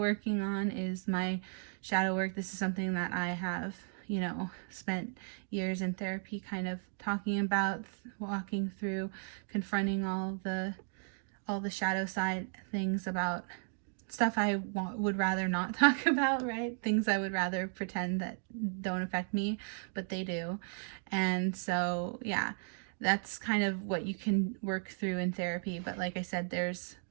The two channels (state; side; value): silent; left; 54 dB below the other